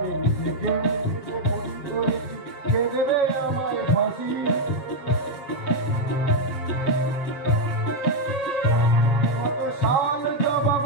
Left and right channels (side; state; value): right; late; 7.5 ms